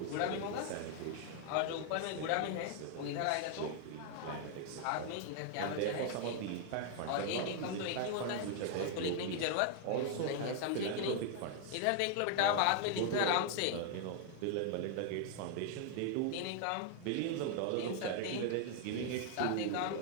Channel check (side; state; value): both; different; correlation 0.00